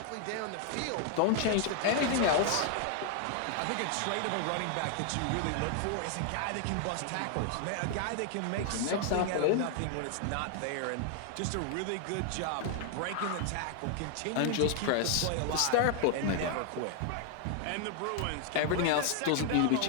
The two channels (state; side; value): different; both; correlation 0.00